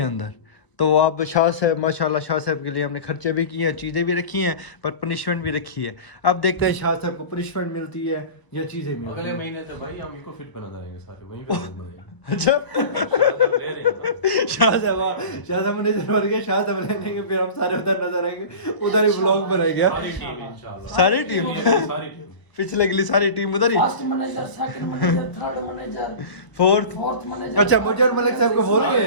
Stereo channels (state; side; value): late; right; 1.0 ms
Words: अंदर। तो आप शाह साहब माशाल्लाह, शाह साहब के लिए हमने खर्चे भी किए हैं, चीज़ें भी रखी हैं, पर पनिशमेंट भी रखी है। अब देखते हैं शाह साहब को पनिशमेंट मिलती है या चीज़ें मिलती अगले हैं। महीने तो भाई हम इको फिट बना देंगे सारे, वहीं पे लोग बनाएंगे। अच्छा ले रहे हैं शाह साहब मैनेजर बन गए, शाह साहब लेंगे, फिर हम सारे उधर नजर आएंगे, उधर ही व्लॉग बनाएंगे। सारी टीम इंशाल्लाह, सारी टीम पिछले अगली सारी टीम उधर ही, first manager, second manager, third manager, fourth manager. अच्छा, मुझे और मलिक साहब को बोल रहे